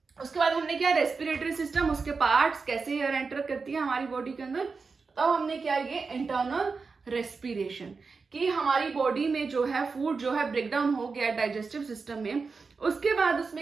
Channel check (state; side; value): quieter; left; 4.6 dB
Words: उसके बाद हमने किया रेस्पिरेटरी सिस्टम, उसके पार्ट्स, कैसे एयर एंटर करती है हमारी बॉडी के अंदर। तब हमने किया ये इंटरनल रेस्पिरेशन, कि हमारी बॉडी में जो है फूड जो है ब्रेकडाउन हो गया डाइजेस्टिव सिस्टम में, उसके बाद